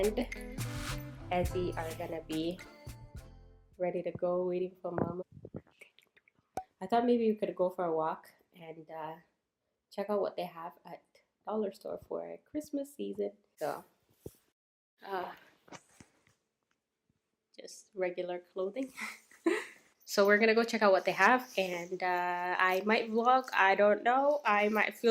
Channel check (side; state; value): both; identical; correlation 1.00